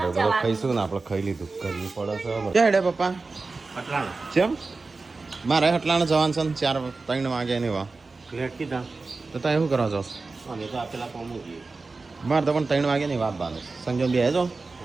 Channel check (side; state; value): left; quieter; 3.8 dB